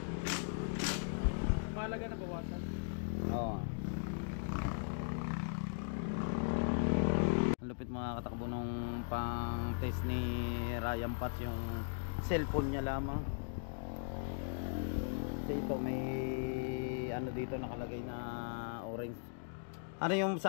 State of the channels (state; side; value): silent; right; digital silence